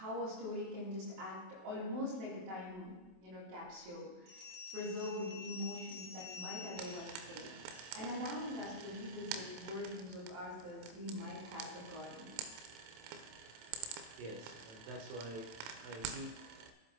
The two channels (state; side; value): late; left; 27 ms